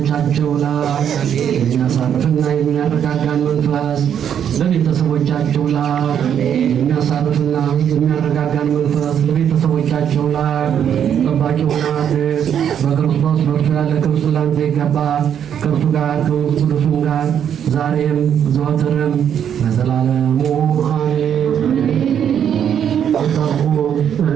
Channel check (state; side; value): quieter; left; 8.8 dB